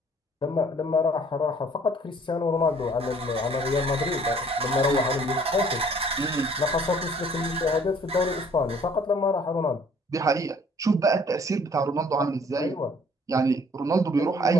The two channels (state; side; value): normal; both; correlation 0.57